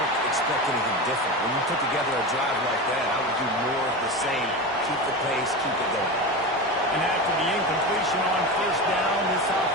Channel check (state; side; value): normal; both; correlation 0.24